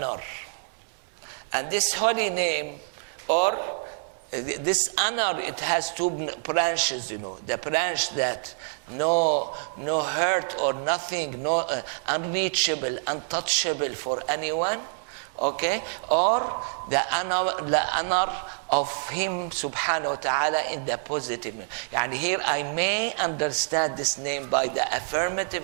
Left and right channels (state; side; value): silent; left; digital silence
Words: And this holy name, or this honor, it has two branches, The branch that no hurt or nothing, no unreachable, untouchable for anyone, okay? Or the honor of him subhanahu wa ta'ala in the positive. Yani here I may understand this name by the